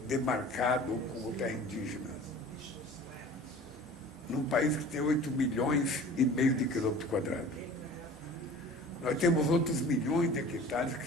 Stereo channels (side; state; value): both; normal; correlation 0.43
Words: demarcado como terra indígena. Num país que tem 8,5 milhões de quilômetros quadrados. Nós temos outros milhões de hectares